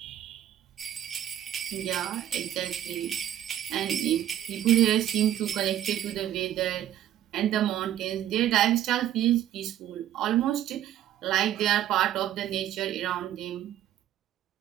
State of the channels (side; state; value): left; quieter; 11.9 dB